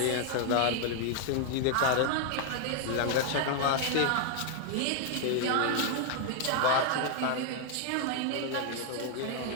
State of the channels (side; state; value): both; different; correlation 0.00